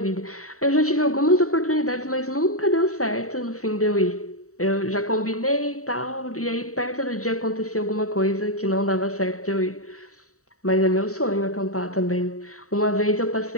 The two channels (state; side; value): late; right; 0.65 ms